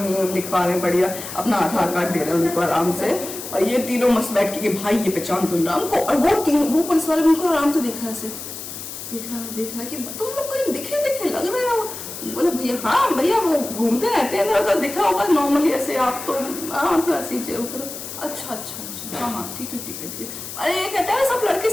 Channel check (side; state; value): left; noise; hiss, 10 dB below the sound